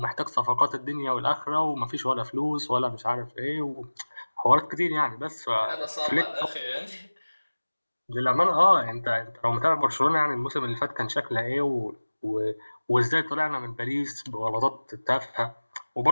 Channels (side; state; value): both; inverted; correlation -1.00